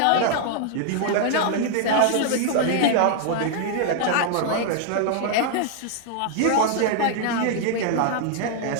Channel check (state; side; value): different; both; correlation -0.01